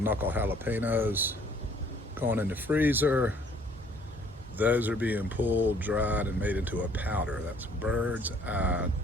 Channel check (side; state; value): both; normal; correlation 0.59